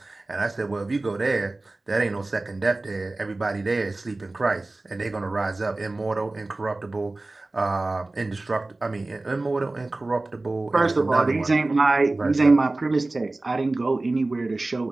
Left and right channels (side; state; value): left; quieter; 3.0 dB